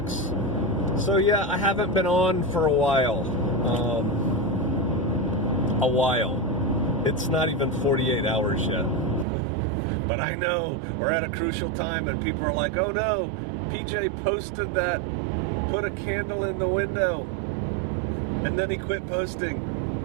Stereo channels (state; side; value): drops out; left; at 9.2 s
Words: So yeah, I haven't been on for a while. It's not even 48 hours yet. But I know we're at a crucial time and people are like, oh no, PJ posted that, put a candle in the window, and then he quit posting.